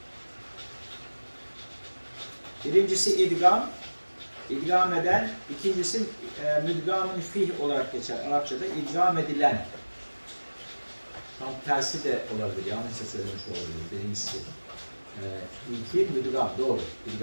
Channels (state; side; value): inverted; both; correlation -1.00